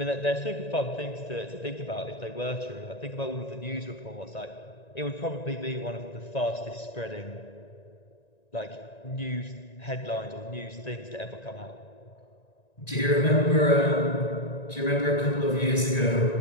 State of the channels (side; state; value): right; late; 1.9 ms